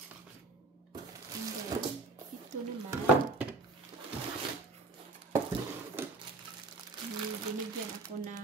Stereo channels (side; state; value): left; quieter; 3.4 dB